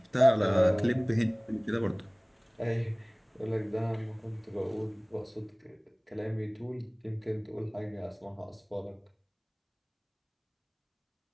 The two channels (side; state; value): both; identical; correlation 1.00